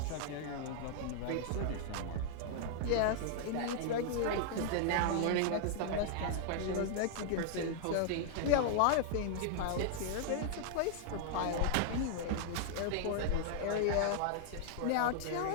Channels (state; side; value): different; both; correlation -0.01